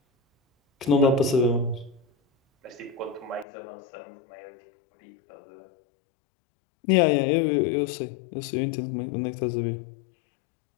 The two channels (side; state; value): right; drops out; at 3.5 s